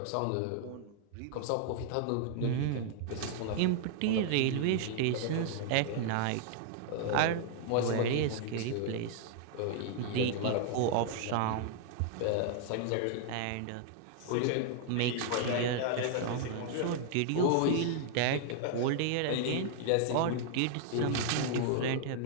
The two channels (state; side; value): different; both; correlation -0.01